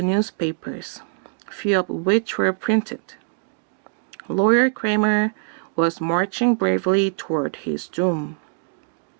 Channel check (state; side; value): silent; left; digital silence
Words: newspapers, few of which were printed. Lawyer Kramer was marching bravely toward his doom.